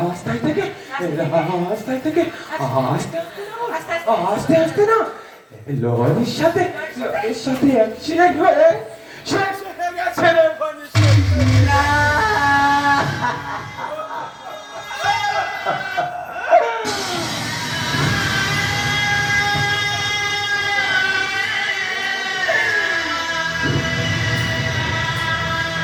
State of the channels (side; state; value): both; identical; correlation 1.00